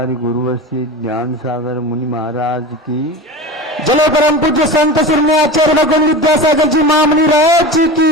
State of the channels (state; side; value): normal; both; correlation 0.30